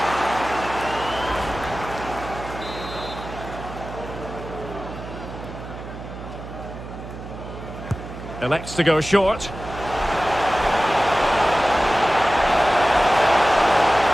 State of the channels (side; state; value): right; noise; hum, 11 dB below the sound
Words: Elects to go short.